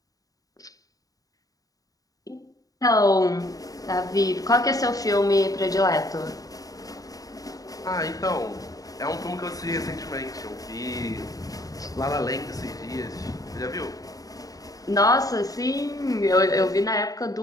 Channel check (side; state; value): right; late; 0.17 ms